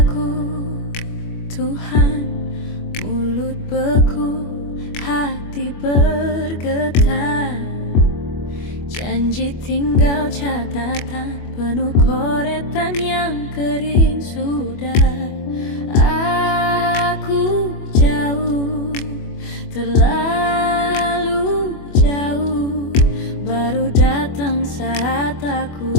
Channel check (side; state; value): right; late; 25 ms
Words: Tuhan, mulut beku, hati bergetar. Janji tinggal catatan, penuh coretan yang kering sudah. Aku jauh, terlalu jauh. Baru datang saat aku